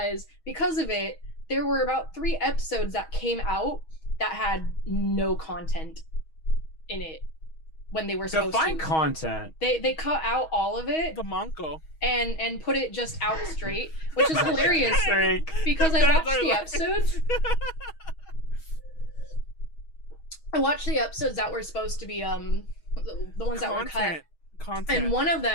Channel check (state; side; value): late; right; 6.3 ms